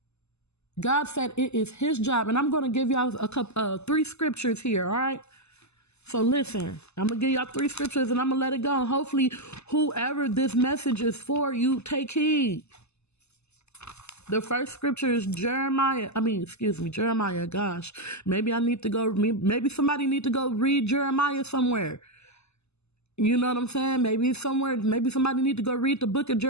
God said it is his job. And I'm going to give y'all 3 scriptures here, all right? So listen, I'm going to give y'all 3 scriptures and I'm going to let it go. And hopefully whoever this message is for, you take heed. The first scripture is Jeremiah. Gosh, maybe somebody need to go read Jeremiah somewhere. You know what I'm saying? Maybe somebody need to go read the book of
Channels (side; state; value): right; late; 0.80 ms